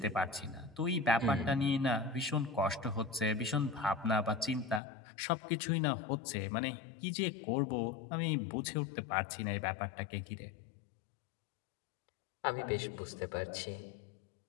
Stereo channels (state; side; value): drops out; right; at 4.8 s